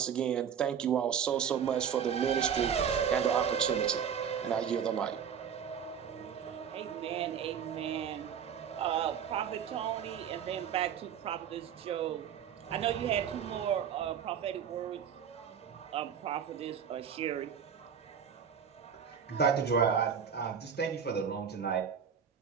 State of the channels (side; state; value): left; quieter; 7.8 dB